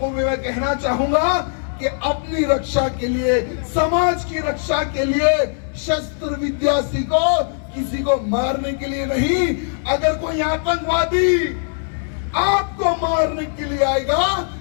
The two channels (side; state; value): right; silent; digital silence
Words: भी मैं कहना चाहूंगा कि अपनी रक्षा के लिए, समाज की रक्षा के लिए शस्त्र विद्या सीखो, किसी को मारने के लिए नहीं। अगर कोई आतंकवादी आपको मारने के लिए आएगा